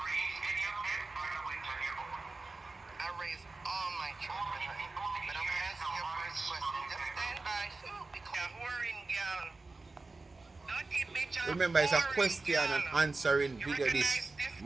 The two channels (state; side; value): quieter; left; 3.5 dB